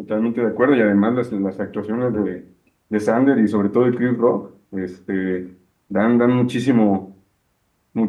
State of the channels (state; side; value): identical; both; correlation 1.00